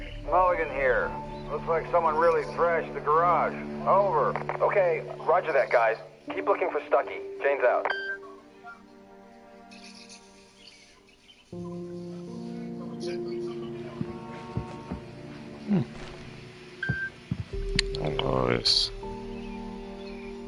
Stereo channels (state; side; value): identical; both; correlation 1.00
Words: Mulligan here. Looks like someone really thrashed the garage. Over. Okay, roger that, guys. Keep looking for Stucky. Jane's out. Nice.